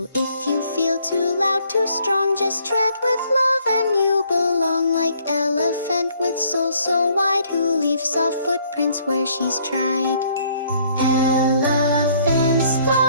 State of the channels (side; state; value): both; inverted; correlation -0.64